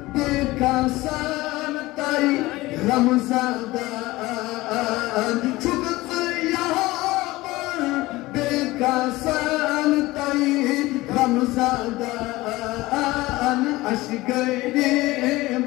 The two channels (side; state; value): right; quieter; 19.4 dB